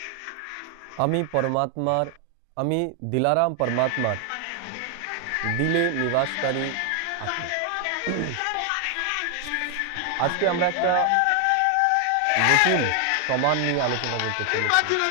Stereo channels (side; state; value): both; different; correlation 0.00